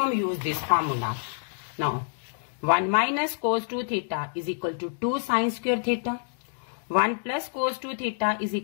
use this formula. Now 1 minus cos 2 theta is equal to 2 sin square theta. 1 plus cos 2 theta is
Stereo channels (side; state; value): right; silent; digital silence